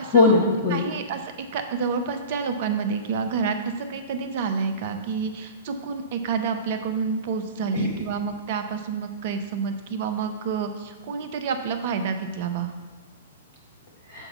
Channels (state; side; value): inverted; both; correlation -0.34